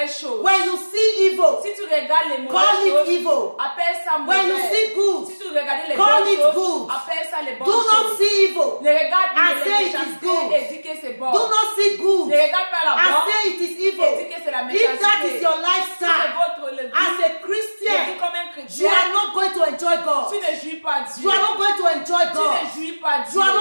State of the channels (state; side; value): inverted; both; correlation -1.00